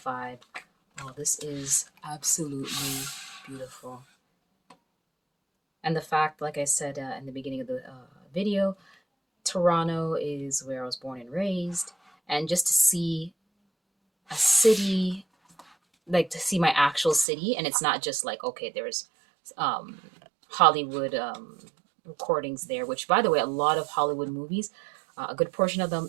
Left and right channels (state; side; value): drops out; left; at 17.2 s